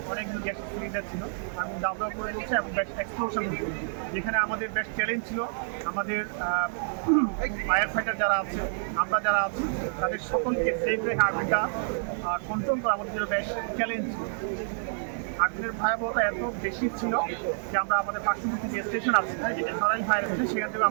অনেকগুলো গ্যাস সিলিন্ডার ছিল, আগুন দাউ দাউ করে চলছে এবং বেশ এক্সপ্লোশন হচ্ছে। যেখানে আমাদের বেশ চ্যালেঞ্জ ছিল, আমাদের ফায়ার ফাইটার যারা আছে, আমরা যারা আছি, তাদের সকলকে সেফ রেখে আগুনটা কন্ট্রোল করা আমাদের জন্য বেশ চ্যালেঞ্জ ছিল। আগুনের ভয়াবহতা এত বেশি ছিল যে আমরা আমাদের পার্শ্ববর্তী যে স্টেশন আছে, যেটা সরাই ফায়ার স্টেশন, সেখান থেকে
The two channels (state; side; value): silent; left; digital silence